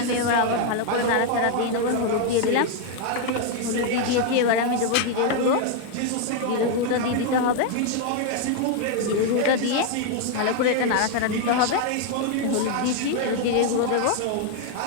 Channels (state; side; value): different; both; correlation 0.01